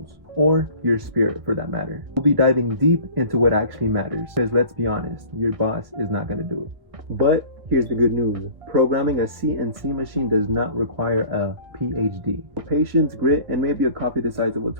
or your spirit for that matter. We'll be diving deep into what actually matters, because let's be honest, your boss is not going to do it. But here's the good news. Programming a CNC machine does not require a PhD. Patience, grit, and maybe a copy the size of a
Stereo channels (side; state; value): left; late; 1.6 ms